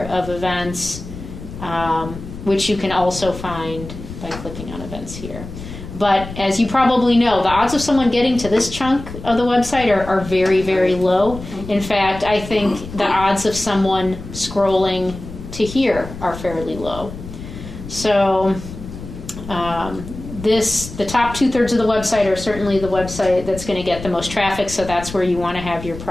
of events, which you can also find by clicking on events here. But as you probably know, the odds of someone getting to this chunk of the website are very, very low. In fact, I think the odds of someone scrolling to here are fairly low. So the top 2/3 of the website are certainly the website that's going to get the most traffic, so that's where you want to have your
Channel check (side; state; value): left; noise; rumble, 12 dB below the sound